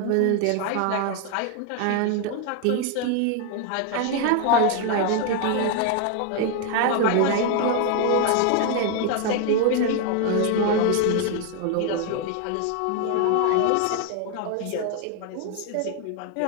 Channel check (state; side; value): different; both; correlation 0.00